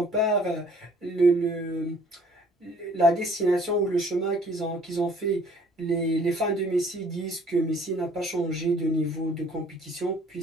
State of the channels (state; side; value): normal; both; correlation 0.57